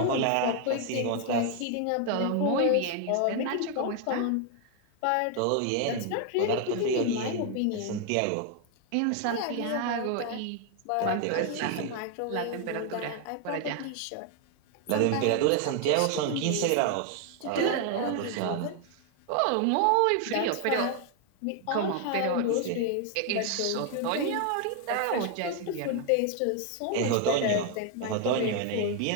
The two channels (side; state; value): both; different; correlation 0.00